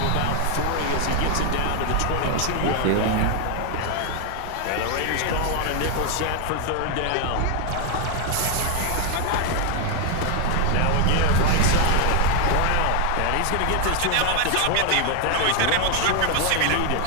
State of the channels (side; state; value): both; different; correlation 0.01